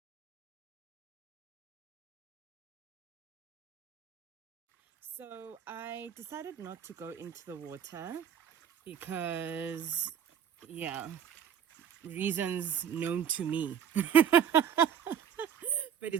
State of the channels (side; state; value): left; quieter; 8.4 dB